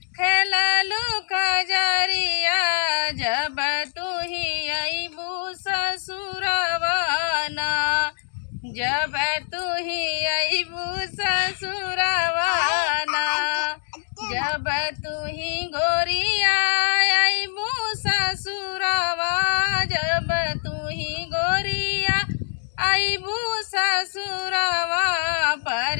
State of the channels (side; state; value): right; silent; digital silence